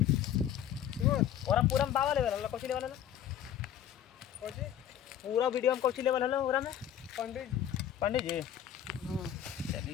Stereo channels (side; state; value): right; quieter; 10.3 dB